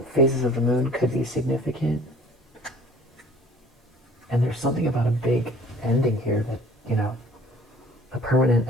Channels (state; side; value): normal; both; correlation 0.51